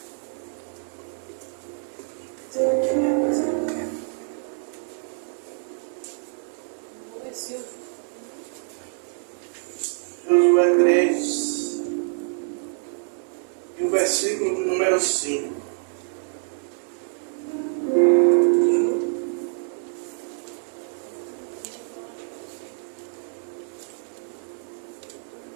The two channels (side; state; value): left; silent; digital silence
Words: Josué 3 e o versículo de número 5.